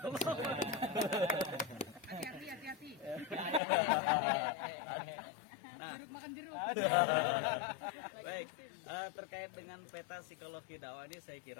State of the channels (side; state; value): right; drops out; at 3.6 s